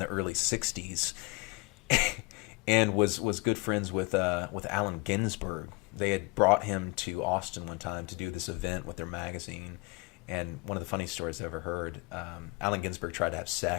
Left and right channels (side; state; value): right; quieter; 27.3 dB